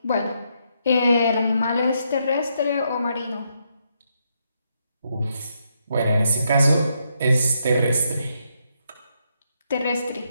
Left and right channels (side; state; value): both; inverted; correlation -0.78